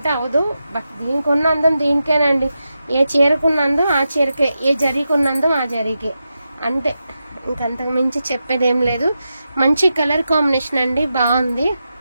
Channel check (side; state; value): both; inverted; correlation -0.89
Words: అవదు. బట్ దీనికి ఉన్న అందం దీనికేనండి. ఏ చీరకున్న అందం ఆ చీరకే, ఏ జరీకున్న అందం ఆ జరీకే. అంటే ఇంకంతకు మించి చెప్పేదేం లేదు. మంచి కలర్ కాంబినేషన్ అండి, బాగుంది.